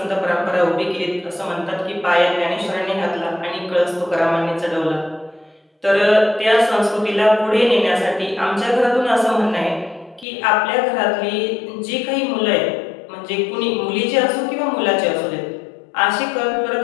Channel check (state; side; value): drops out; right; at 10.2 s